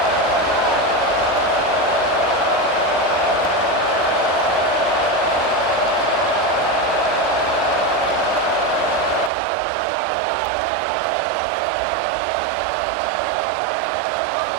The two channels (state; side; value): drops out; left; at 9.3 s